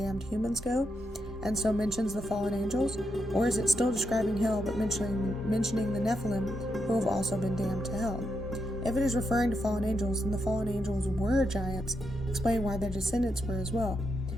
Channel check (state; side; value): normal; both; correlation 0.83